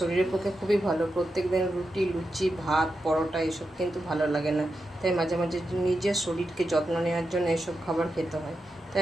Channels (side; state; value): both; normal; correlation 0.88